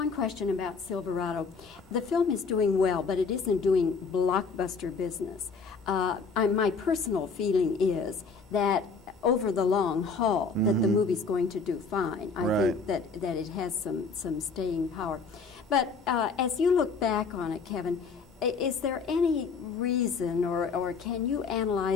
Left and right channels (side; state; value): right; quieter; 4.8 dB